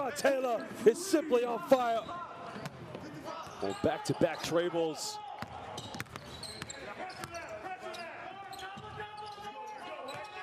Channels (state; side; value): identical; both; correlation 1.00